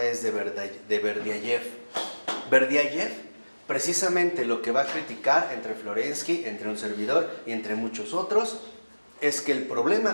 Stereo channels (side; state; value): both; inverted; correlation -1.00